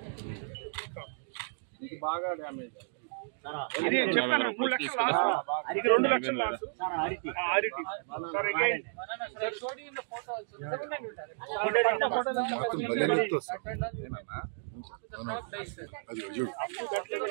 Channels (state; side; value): silent; left; digital silence